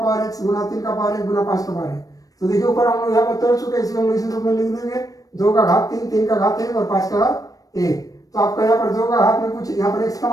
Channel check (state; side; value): late; right; 0.17 ms